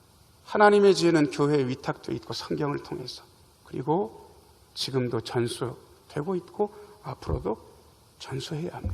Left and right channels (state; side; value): identical; both; correlation 1.00